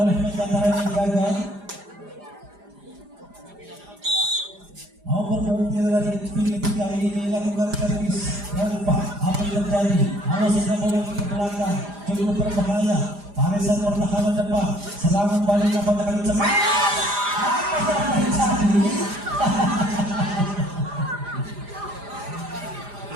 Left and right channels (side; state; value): left; late; 4.9 ms